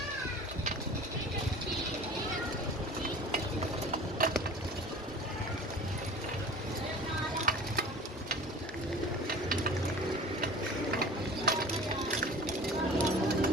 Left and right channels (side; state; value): both; normal; correlation 0.41